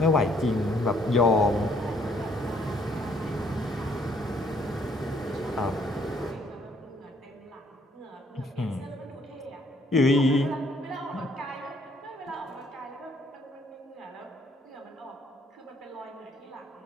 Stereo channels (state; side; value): normal; both; correlation 0.65